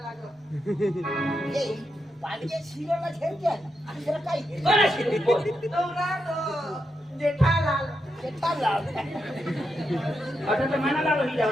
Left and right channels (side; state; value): both; normal; correlation 0.84